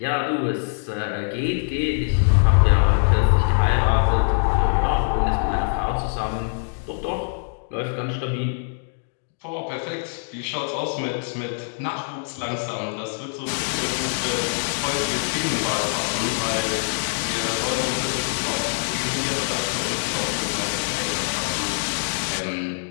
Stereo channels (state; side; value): silent; right; digital silence